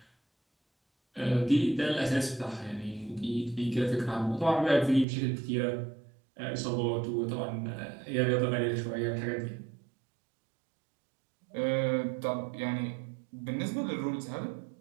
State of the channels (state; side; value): drops out; left; at 5.1 s